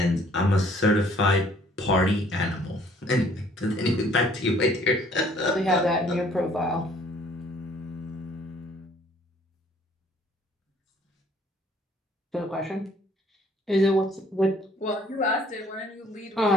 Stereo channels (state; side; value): normal; both; correlation 0.59